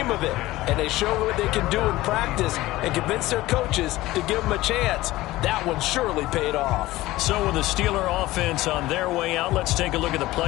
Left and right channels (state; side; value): quieter; right; 17.7 dB